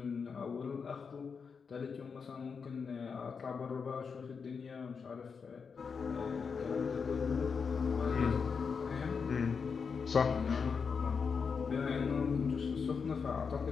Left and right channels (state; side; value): quieter; right; 5.7 dB